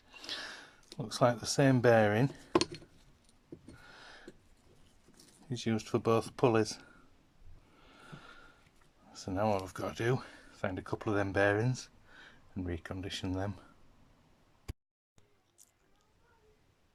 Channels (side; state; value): both; identical; correlation 1.00